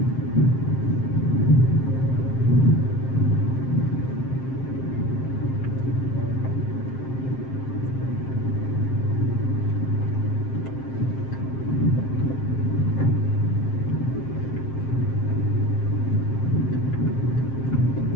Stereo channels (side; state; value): right; late; 7.6 ms